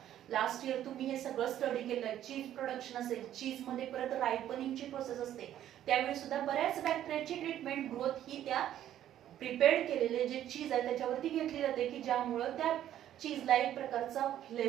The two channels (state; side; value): quieter; left; 11.6 dB